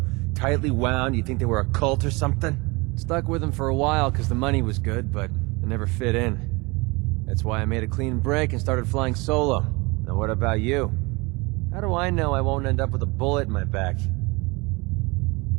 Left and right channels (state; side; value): quieter; left; 26.0 dB